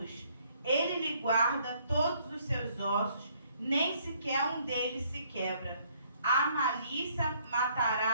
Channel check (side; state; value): both; inverted; correlation -0.65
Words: Ele lhe guarda todos os seus ossos, nem sequer um deles se quebra. A malícia